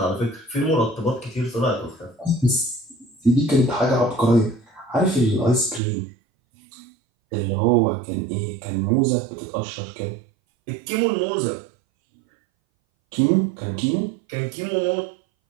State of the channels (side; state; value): left; drops out; at 5.8 s